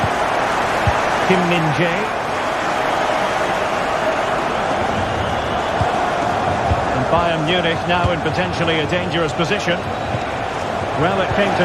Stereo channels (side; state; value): both; identical; correlation 1.00